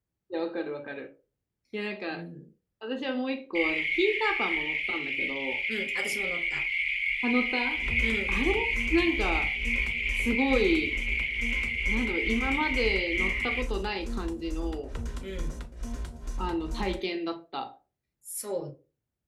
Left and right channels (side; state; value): both; identical; correlation 1.00